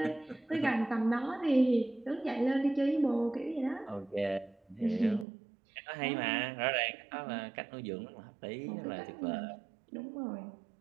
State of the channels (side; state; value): left; drops out; at 5.2 s